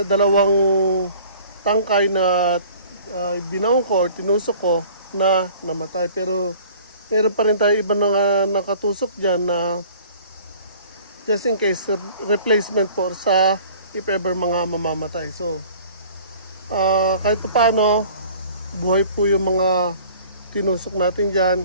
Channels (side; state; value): both; inverted; correlation -0.49